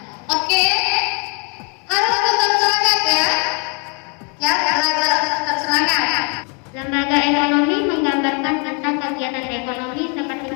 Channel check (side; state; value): right; quieter; 36.0 dB